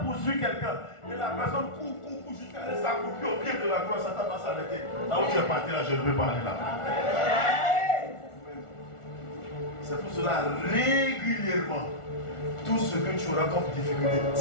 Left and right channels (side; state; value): right; late; 1.4 ms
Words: poursuit quelqu'un, et la personne court jusqu'à aller s'accroupir au pied de la croix, Satan va s'arrêter. Là où tu es parti, là, je ne veux pas aller là. C'est pour cela, régulièrement, tout ce que tu auras comme difficulté,